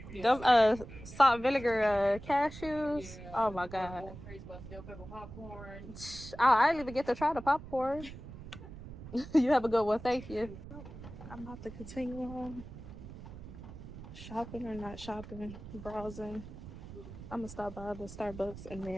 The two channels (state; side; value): noise; right; rumble, 13 dB below the sound